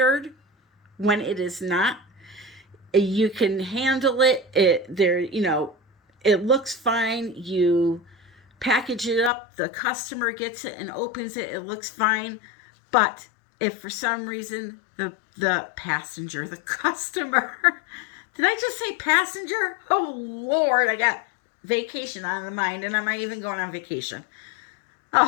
when it is not. You can handle it. It looks fine. You package it up, the customer gets it and opens it, it looks fine. But if for some reason the passenger, the customer, did I just say passenger? Oh Lord, I got vacation on the mind, and I'm not even going on vacation.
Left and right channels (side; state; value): right; drops out; at 9.3 s